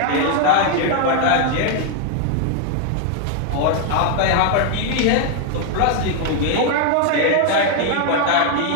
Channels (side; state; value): both; different; correlation 0.00